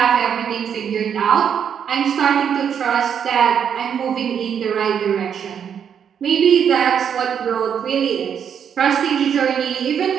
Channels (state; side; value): quieter; left; 8.0 dB